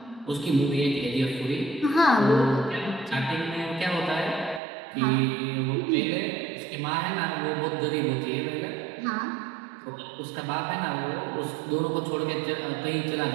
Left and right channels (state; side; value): drops out; left; at 4.6 s